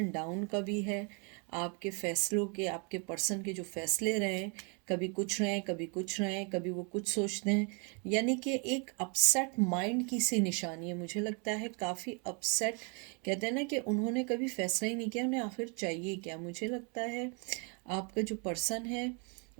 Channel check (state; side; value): quieter; left; 35.4 dB